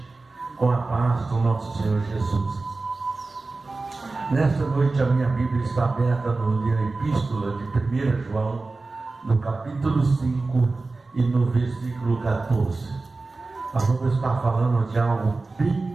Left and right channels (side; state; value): left; quieter; 3.6 dB